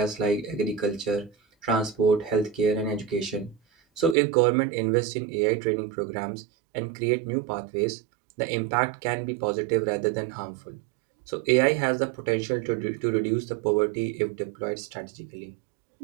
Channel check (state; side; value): drops out; left; at 4.2 s